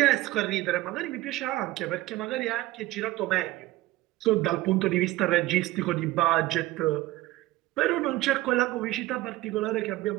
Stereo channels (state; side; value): quieter; left; 17.4 dB